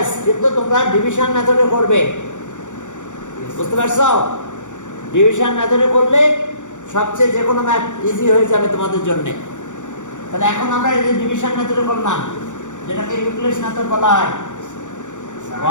কিন্তু তোমরা ডিভিশন মেথডে করবে, বুঝতে পারছো? ডিভিশন মেথডে করলে সবচেয়ে যে কোনো ম্যাথ ইজি হয়ে যাবে তোমাদের জন্য। তাহলে এখন আমরা এই ডিভিশন মেথডে করলাম, যেটাকে ইউক্লিডস মেথড বলা হয়।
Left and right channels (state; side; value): late; right; 0.85 ms